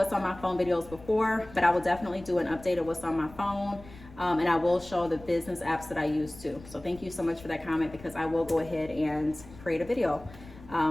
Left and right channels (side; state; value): left; noise; rumble, 19 dB below the sound